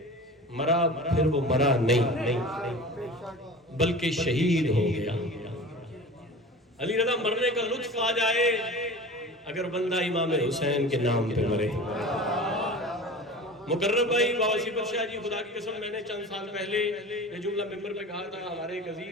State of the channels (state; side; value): normal; both; correlation 0.36